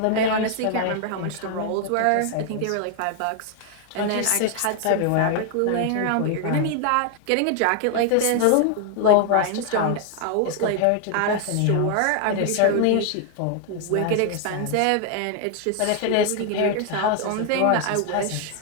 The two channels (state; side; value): different; both; correlation 0.00